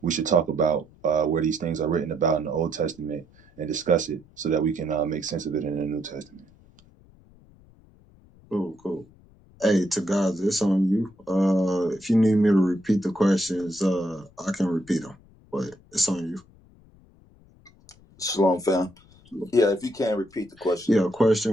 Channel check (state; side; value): noise; left; rumble, 27 dB below the sound